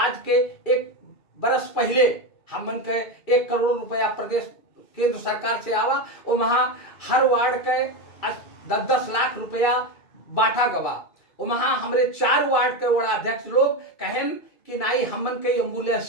के 1 बरस पहले हमन के 1 करोड़ रुपया प्रदेश केंद्र सरकार से आवा और वहां हर वार्ड के 10-10 लाख रुपया बांटा गवा। और वहां हमारे 4 वार्ड के वड़ाध्यक्ष लोग कहें कि नहीं हमन के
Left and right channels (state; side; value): late; right; 2.4 ms